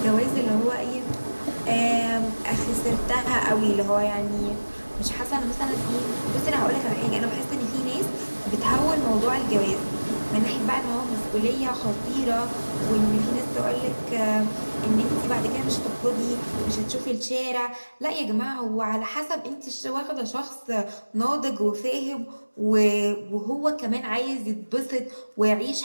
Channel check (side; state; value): both; inverted; correlation -1.00